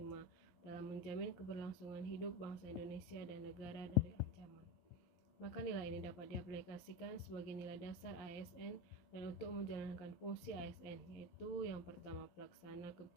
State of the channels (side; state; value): right; late; 11 ms